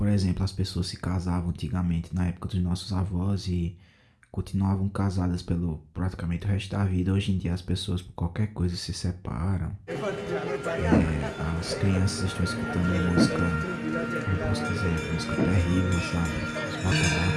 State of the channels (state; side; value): identical; both; correlation 1.00